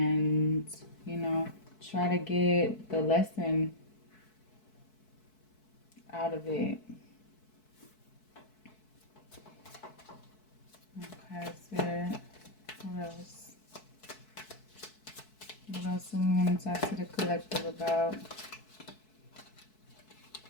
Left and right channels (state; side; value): late; right; 4.6 ms